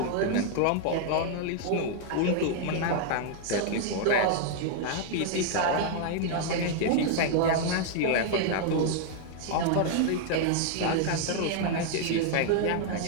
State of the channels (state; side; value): different; both; correlation 0.00